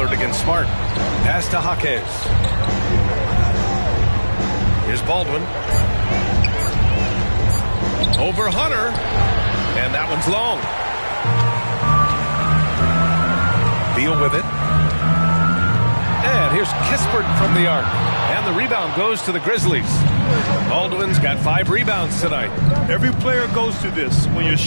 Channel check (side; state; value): both; inverted; correlation -1.00